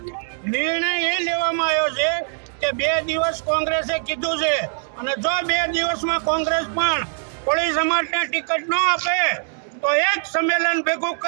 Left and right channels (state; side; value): silent; left; 59 dB below the other